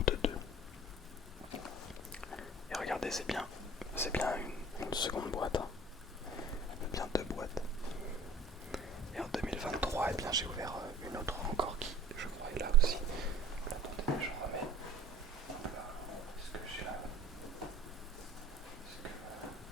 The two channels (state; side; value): normal; both; correlation 0.46